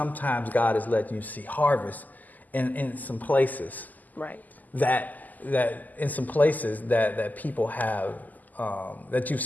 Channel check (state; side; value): late; right; 0.082 ms